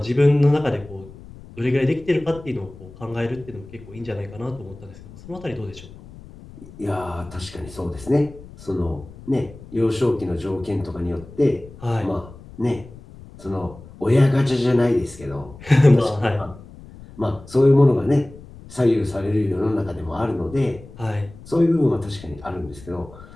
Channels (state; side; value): noise; left; rumble, 18 dB below the sound